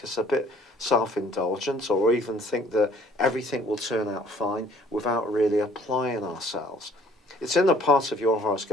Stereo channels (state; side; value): normal; both; correlation 0.57